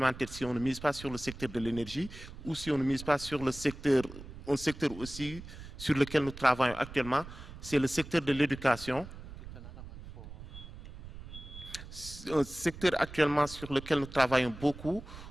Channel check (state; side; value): noise; right; rumble, 14 dB below the sound